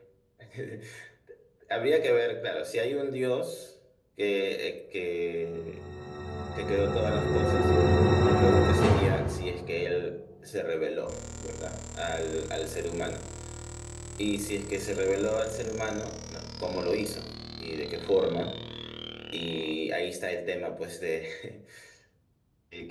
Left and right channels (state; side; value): identical; both; correlation 1.00